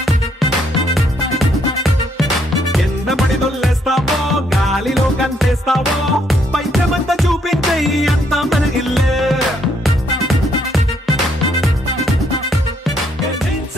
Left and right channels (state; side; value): normal; both; correlation 0.71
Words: కింద పడి దొల్లేస్తావో గాలిలో కంటేస్తావో పైచమంతా చూపించే అంతా మన ఇల్లే జీన్స్